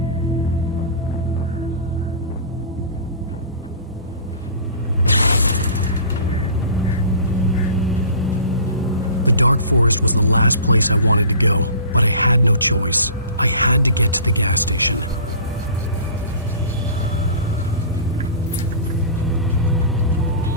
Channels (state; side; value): inverted; both; correlation -0.41